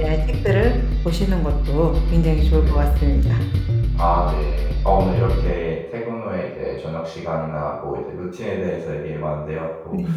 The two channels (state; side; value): identical; both; correlation 1.00